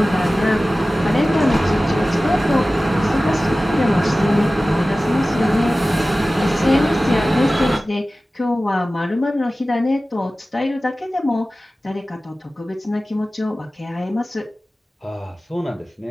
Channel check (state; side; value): normal; both; correlation 0.96